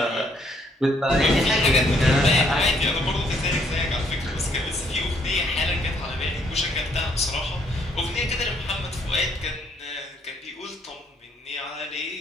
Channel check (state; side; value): normal; both; correlation 0.68